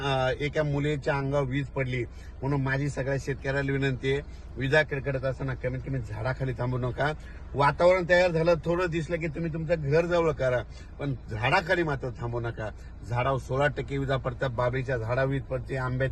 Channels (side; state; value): both; identical; correlation 1.00